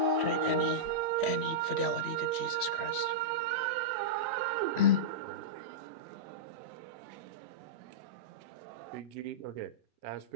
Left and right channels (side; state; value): right; late; 3.1 ms